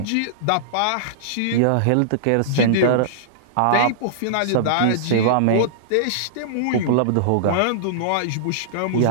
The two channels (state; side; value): different; both; correlation -0.02